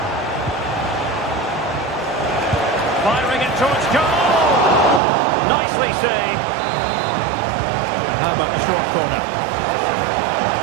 Firing it towards goal! Nicely saved. And how about the short corner?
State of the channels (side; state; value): left; drops out; at 5.0 s